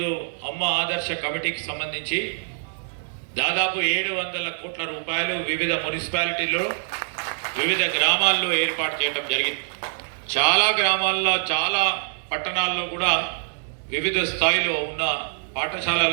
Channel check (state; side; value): silent; left; 62 dB below the other